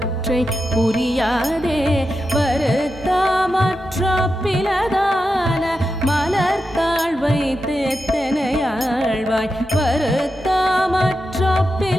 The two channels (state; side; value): normal; both; correlation 0.89